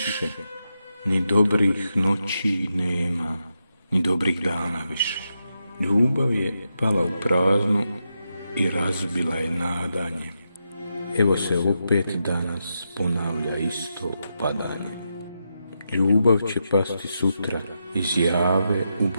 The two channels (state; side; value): inverted; both; correlation -0.85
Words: ni dobrih noći nema, ni dobrih dana više. Ljubav je pala u prazno i razbila je nadanje. Evo se opet danas ponavlja isto padanje. Ljubav će pasti sutra iz jave u